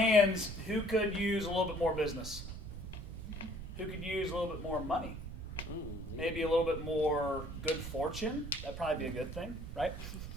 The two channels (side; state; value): right; noise; rumble, 9 dB below the sound